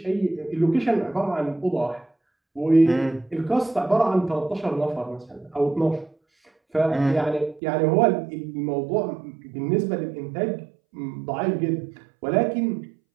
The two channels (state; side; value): drops out; left; at 7.6 s